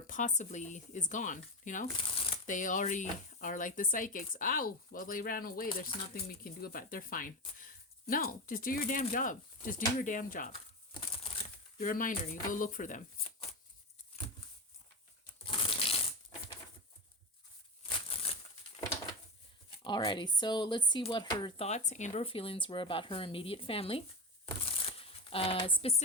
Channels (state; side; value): normal; both; correlation 0.18